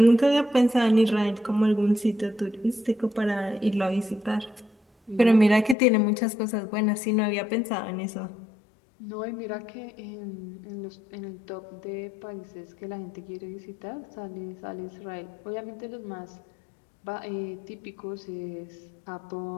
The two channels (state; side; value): drops out; right; at 5.8 s